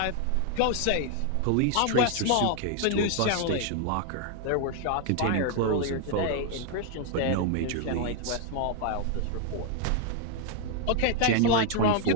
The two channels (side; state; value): both; different; correlation 0.00